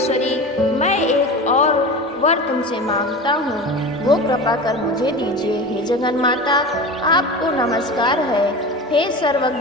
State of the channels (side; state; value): both; normal; correlation 0.30